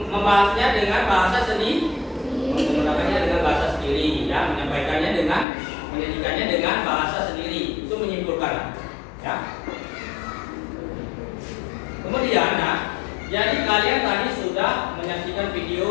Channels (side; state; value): right; drops out; at 5.5 s